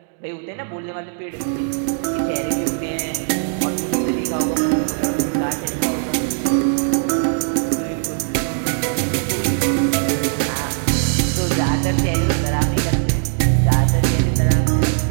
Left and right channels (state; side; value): silent; left; digital silence